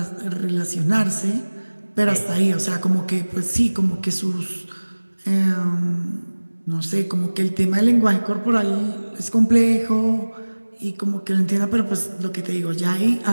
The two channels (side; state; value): both; inverted; correlation -1.00